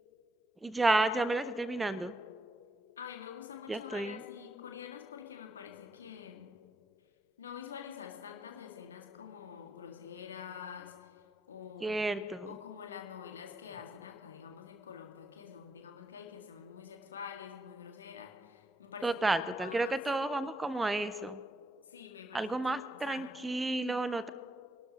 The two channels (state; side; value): normal; both; correlation 0.80